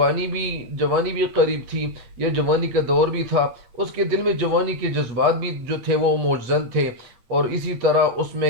بھی قریب تھی، یا جوانی کا دور بھی تھا، اس کے دل میں جوانی کے جذبات بھی جو تھے وہ موجزن تھے، اور اسی طرح اس میں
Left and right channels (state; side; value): late; left; 8.6 ms